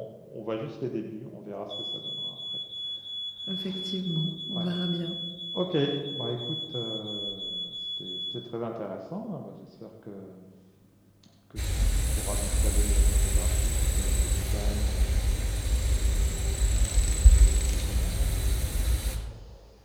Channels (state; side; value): identical; both; correlation 1.00